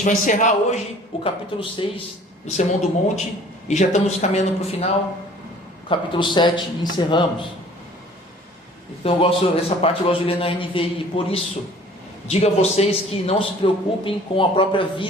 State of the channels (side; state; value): both; normal; correlation 0.51